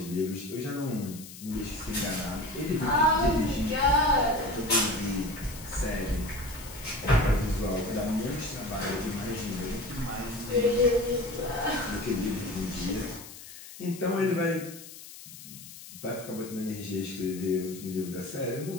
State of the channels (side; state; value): left; noise; hiss, 15 dB below the sound